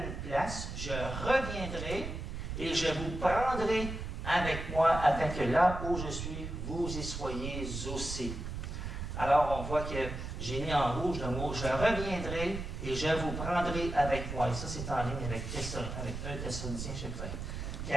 place, je reviendrai et je vous prendrai avec moi afin que là où je suis, vous y soyez aussi. Alors, on voit que j'ai mis en rouge le mot « je reviendrai et je vous prendrai avec moi ». Et ça, c'est en ligne avec 1 Thessaloniciens, chapitre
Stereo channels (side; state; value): right; noise; rumble, 6 dB below the sound